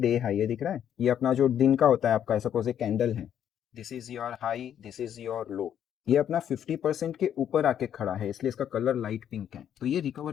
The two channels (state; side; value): quieter; right; 9.6 dB